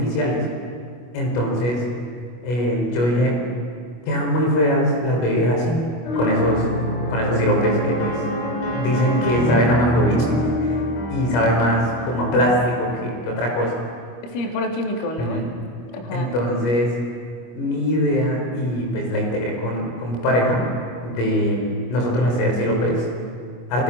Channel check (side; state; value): right; late; 25 ms